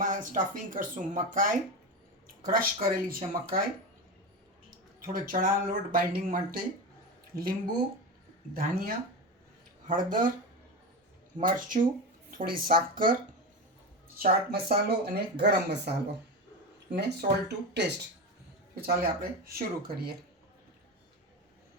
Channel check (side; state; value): both; normal; correlation 0.21